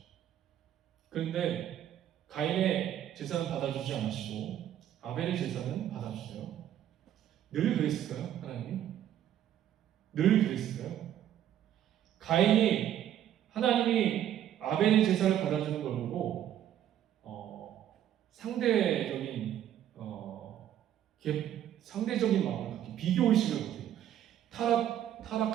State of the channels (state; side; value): quieter; left; 11.0 dB